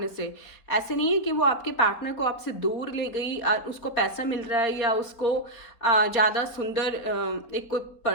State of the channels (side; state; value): right; late; 4.3 ms